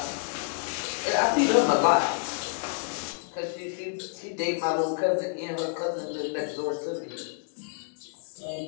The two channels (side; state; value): right; silent; 55 dB below the other